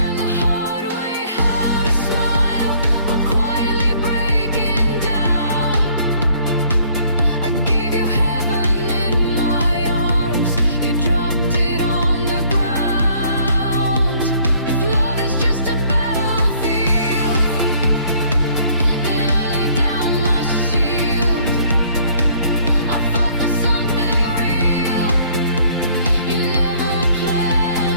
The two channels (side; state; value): both; inverted; correlation -0.60